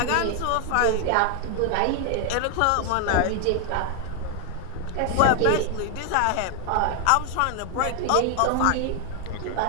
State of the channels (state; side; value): different; both; correlation 0.00